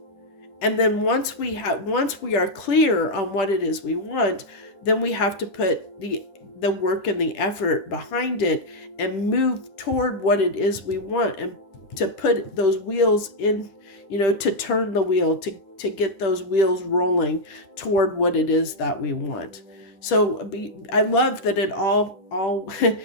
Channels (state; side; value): late; right; 10 ms